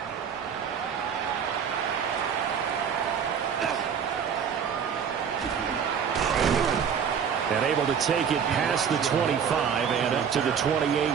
And able to take it past the 25 and up to the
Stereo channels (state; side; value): quieter; left; 7.3 dB